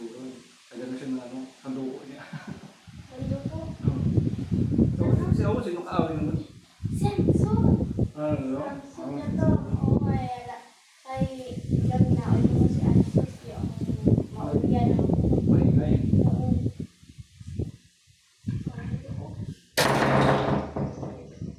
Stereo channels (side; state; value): both; identical; correlation 1.00